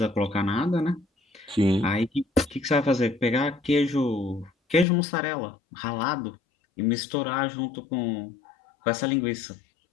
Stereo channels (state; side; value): drops out; right; at 4.9 s